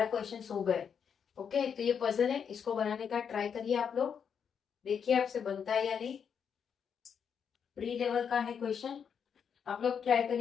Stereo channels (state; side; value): quieter; right; 7.2 dB